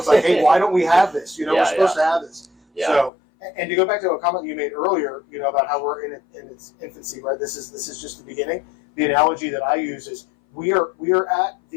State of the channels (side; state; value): right; drops out; at 3.1 s